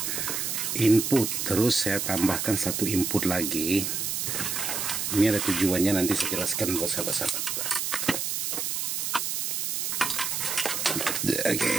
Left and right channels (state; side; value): noise; right; hiss, 1 dB below the sound